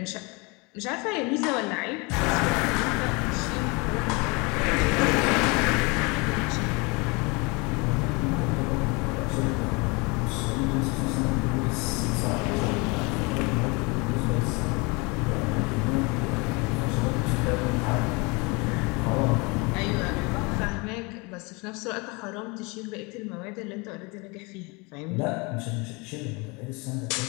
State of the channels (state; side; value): quieter; right; 28.1 dB